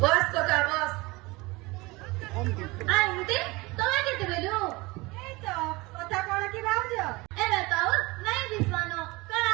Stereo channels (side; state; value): left; quieter; 23.2 dB